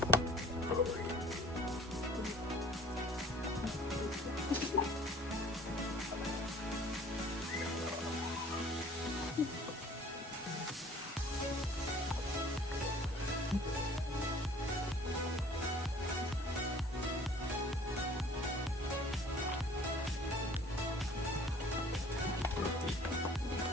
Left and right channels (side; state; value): both; normal; correlation 0.51